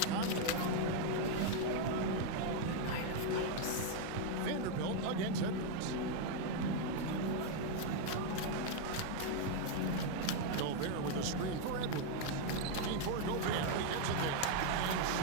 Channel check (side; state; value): both; different; correlation 0.01